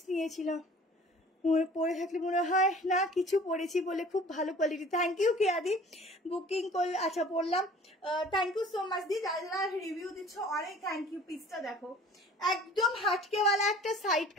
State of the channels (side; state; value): both; normal; correlation 0.48